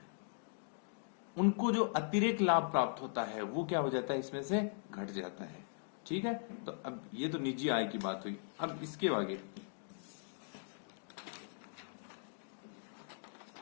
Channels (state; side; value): silent; right; digital silence